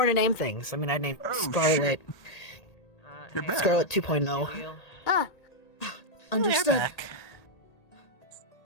to name things. I mean, I named Oh, Scarlet. You're back. Scarlet 2.0. Understood. Back.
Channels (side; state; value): right; late; 1.8 ms